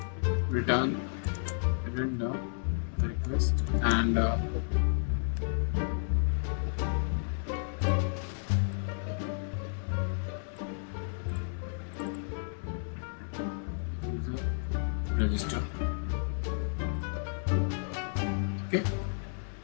return the request, and user register. Okay,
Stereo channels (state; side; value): silent; right; digital silence